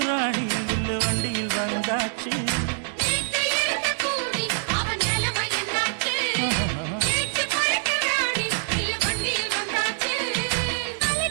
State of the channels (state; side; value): silent; left; digital silence